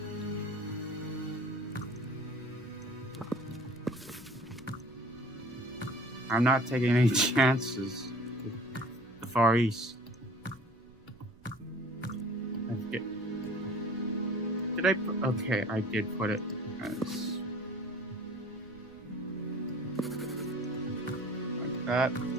I'm not taking any chances with the Far East. Did I put, okay, I did put it as like that.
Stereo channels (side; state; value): right; noise; rumble, 25 dB below the sound